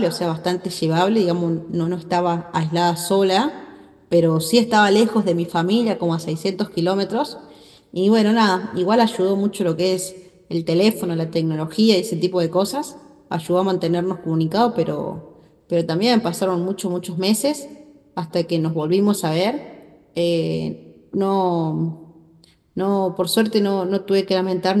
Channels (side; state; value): both; identical; correlation 1.00